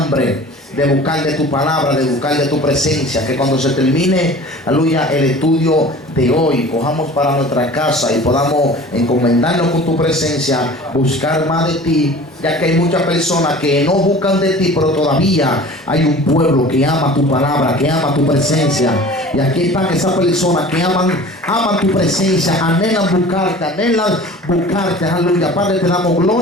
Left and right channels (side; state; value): both; normal; correlation 0.42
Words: de buscar de tu palabra, de buscar de tu presencia, que cuando se termine, aleluya, el estudio de hoy, cojamos para nuestra casa y podamos encomendarnos con tu presencia, buscar más de ti, ya que hay muchas personas que no buscan de ti, pero todavía hay un pueblo que ama tu palabra, que ama tu presencia. Y aquí están esas personas que aman tu presencia, anhelan buscarte, aleluya. Padre, te damos